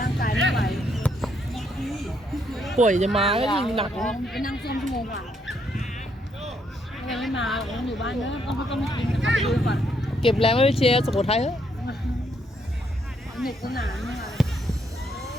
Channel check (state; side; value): normal; both; correlation 0.74